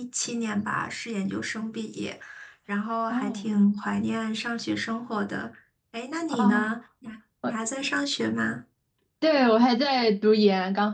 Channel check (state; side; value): identical; both; correlation 1.00